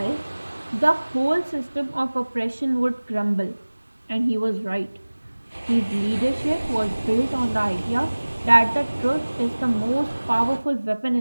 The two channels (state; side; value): inverted; both; correlation -1.00